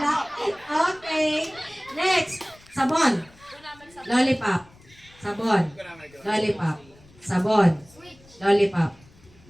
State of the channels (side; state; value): left; noise; rumble, 26 dB below the sound